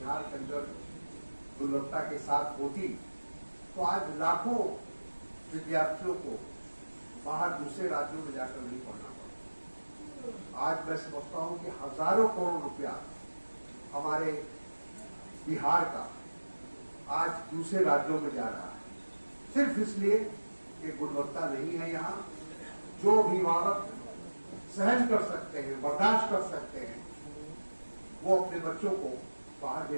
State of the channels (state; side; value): inverted; both; correlation -1.00